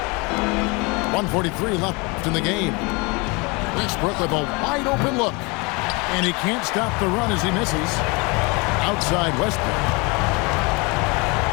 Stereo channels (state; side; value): quieter; right; 28.0 dB